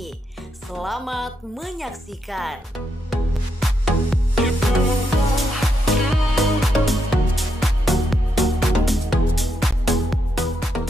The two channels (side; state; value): both; normal; correlation 0.81